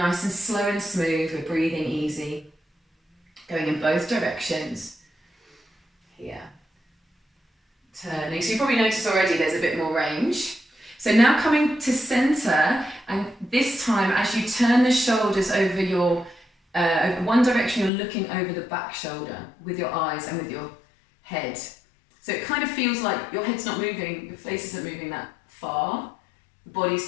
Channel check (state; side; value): drops out; right; at 17.9 s